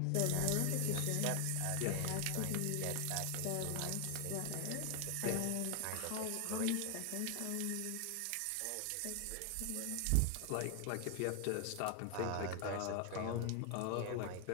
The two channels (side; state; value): both; different; correlation 0.00